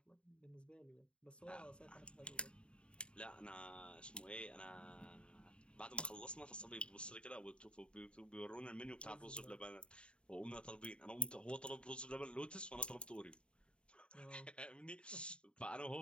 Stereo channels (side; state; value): right; late; 0.055 ms